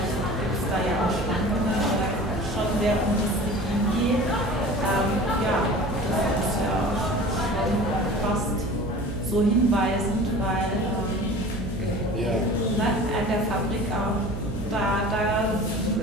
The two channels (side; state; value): right; noise; hum, 8 dB below the sound